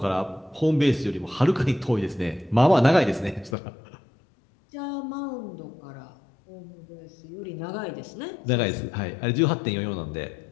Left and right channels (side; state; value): right; drops out; at 3.6 s